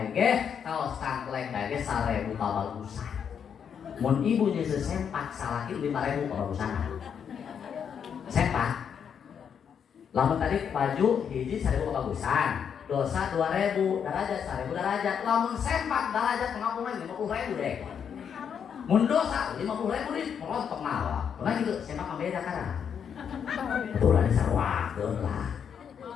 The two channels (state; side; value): quieter; right; 7.6 dB